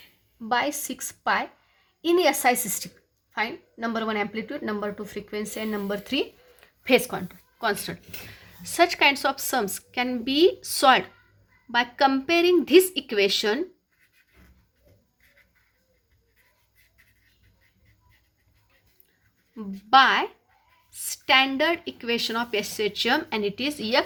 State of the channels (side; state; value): both; identical; correlation 1.00